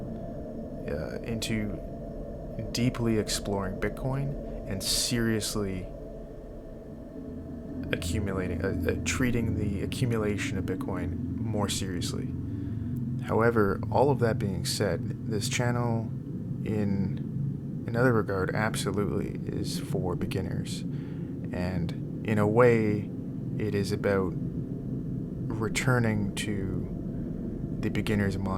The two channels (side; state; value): both; identical; correlation 1.00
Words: deeply exploring Bitcoin and seriously treating the accumulation of Bitcoin more seriously. However, all of that being said, this channel, in another regard, absolutely is for beginners. And in a way, it is about returning to the beginner's